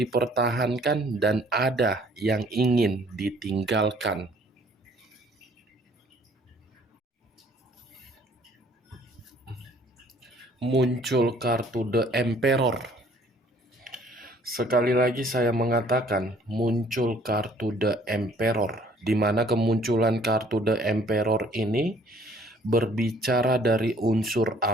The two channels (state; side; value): normal; both; correlation 0.58